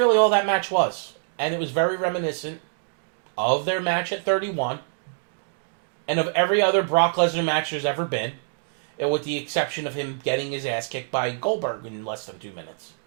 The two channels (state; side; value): silent; left; digital silence